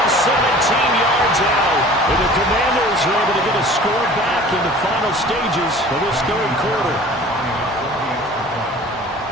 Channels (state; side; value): normal; both; correlation 0.45